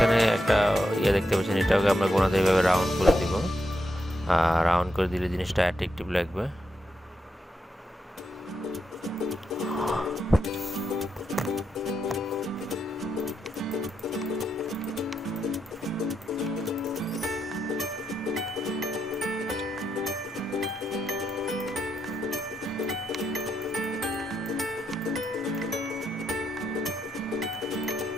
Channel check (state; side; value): normal; both; correlation 0.83